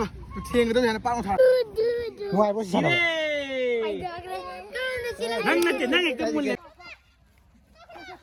thiên cái đó này nó bao thằng ngoài bố sao năng cái mùi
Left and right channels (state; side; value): identical; both; correlation 1.00